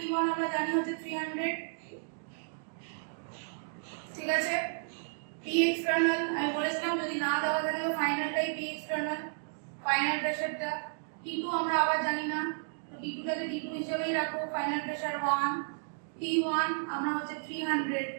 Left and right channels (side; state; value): left; silent; digital silence